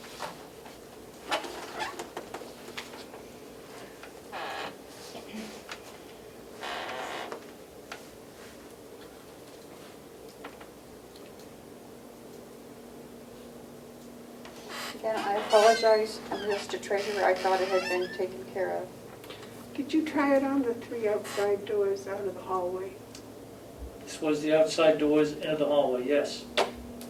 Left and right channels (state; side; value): identical; both; correlation 1.00